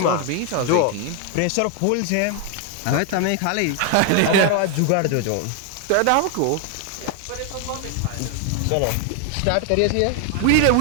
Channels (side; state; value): both; different; correlation 0.00